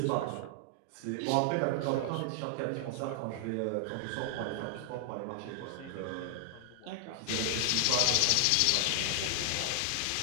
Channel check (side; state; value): both; different; correlation 0.00